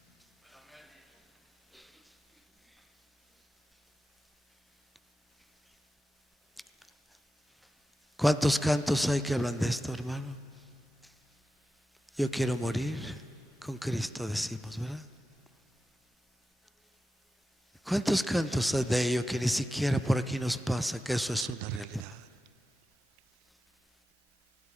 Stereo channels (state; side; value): normal; both; correlation 0.92